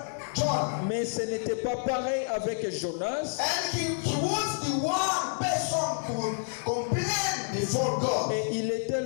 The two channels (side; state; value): right; silent; 59 dB below the other